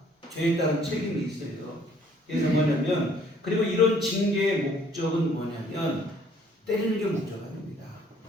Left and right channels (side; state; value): both; normal; correlation 0.61